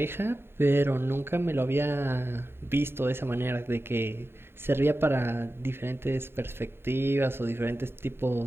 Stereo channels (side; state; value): left; late; 0.11 ms